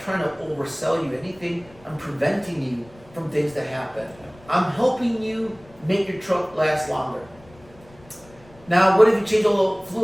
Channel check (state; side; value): noise; left; rumble, 25 dB below the sound